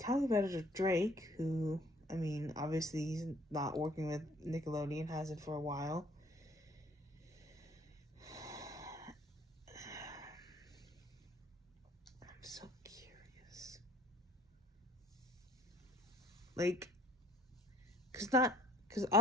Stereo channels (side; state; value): both; normal; correlation 0.57